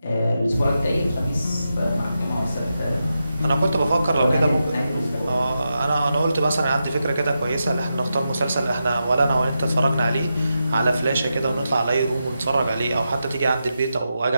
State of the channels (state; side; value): inverted; both; correlation -0.88